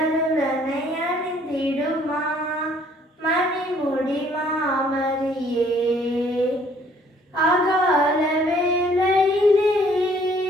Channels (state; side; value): normal; both; correlation 0.61